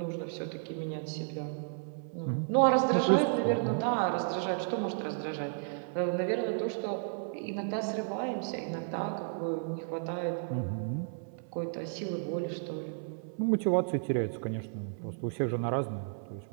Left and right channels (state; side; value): silent; left; 56 dB below the other